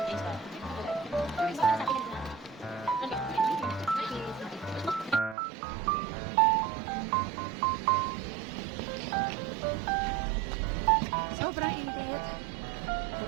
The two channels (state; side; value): drops out; left; at 5.4 s